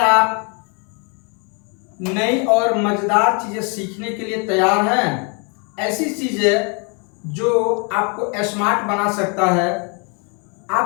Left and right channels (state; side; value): quieter; right; 34.8 dB